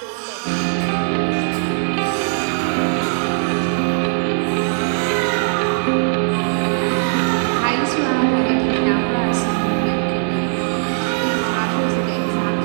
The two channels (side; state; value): left; silent; digital silence